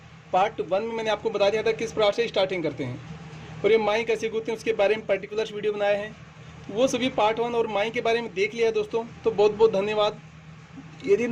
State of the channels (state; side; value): identical; both; correlation 1.00